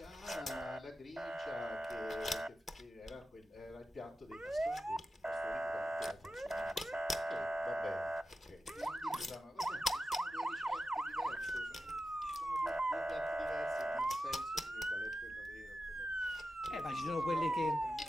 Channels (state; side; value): normal; both; correlation 0.91